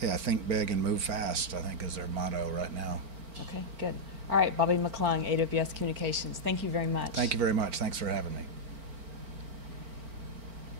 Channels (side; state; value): left; late; 4.4 ms